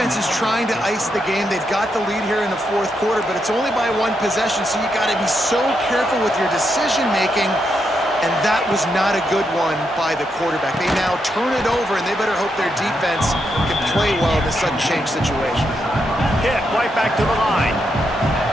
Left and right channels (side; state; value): both; normal; correlation 0.82